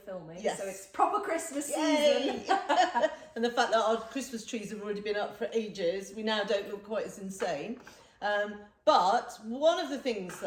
Yes. So it's proper Christmas Yay! season. And the fact that our Christmas trees have already been up for ages, we now don't look quite as insane. But one of the things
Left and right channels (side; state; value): both; identical; correlation 1.00